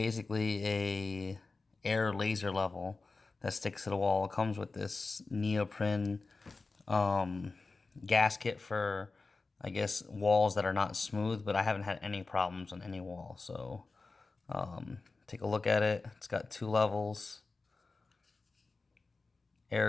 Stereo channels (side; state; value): right; quieter; 3.8 dB